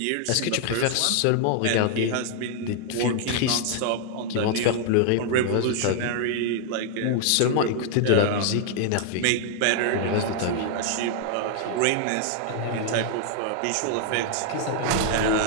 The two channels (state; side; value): different; both; correlation 0.00